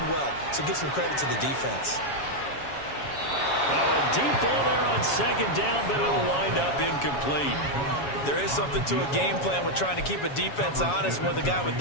well, so give some credit to the defense. A deep ball there on second down, but it'll wind up incomplete. There is something to a game plan with trying to keep a defense honest. With a guy with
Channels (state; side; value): late; right; 7.2 ms